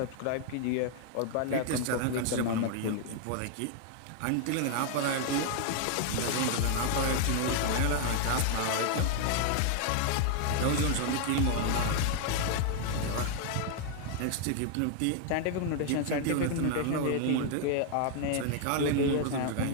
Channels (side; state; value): both; different; correlation 0.00